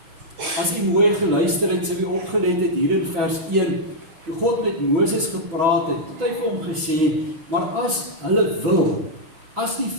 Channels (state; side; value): late; left; 6.1 ms